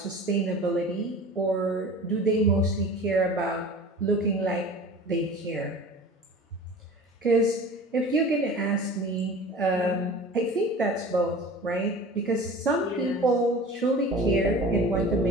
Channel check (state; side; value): normal; both; correlation 0.39